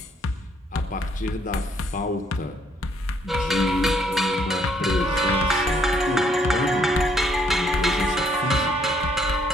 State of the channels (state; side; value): normal; both; correlation 0.68